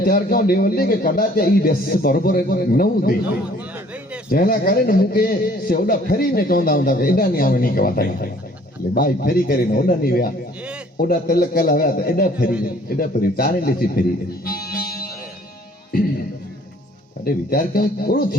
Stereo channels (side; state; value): both; normal; correlation 0.57